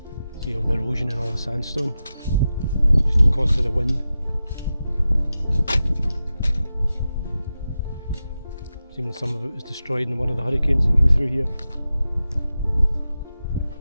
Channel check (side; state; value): both; inverted; correlation -0.92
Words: See all the erosion and all the sandstone, just because of the wind. Seems like some of it was destroyed in one of the hurricanes that came through here.